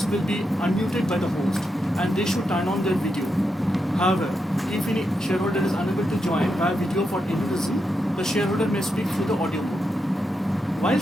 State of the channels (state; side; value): normal; both; correlation 0.85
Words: will be unmuted by the host and they should turn on their video. However, if any shareholder is unable to join via video for any reason, the shareholder may speak through the audio mode. While